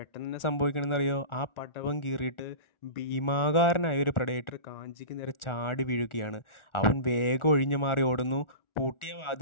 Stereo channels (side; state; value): right; late; 1.4 ms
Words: തന്നെ സംഭവിക്കണമെന്നറിയോ, ആ പടവം കീറിയിട്ട് ഭീമാകാരനായ ഒരു പ്രഡേറ്റർ കാഞ്ചിക്ക് നേരെ ചാടി വീഴുകയാണ്. അവൻ വേഗം ഒഴിഞ്ഞു മാറി ഓടുന്നു. പൂട്ടിയ